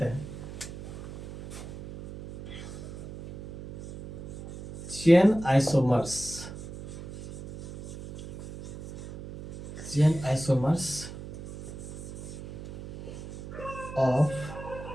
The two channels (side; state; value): right; noise; hum, 11 dB below the sound